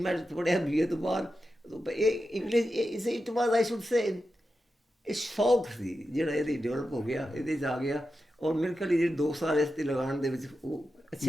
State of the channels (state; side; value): normal; both; correlation 0.90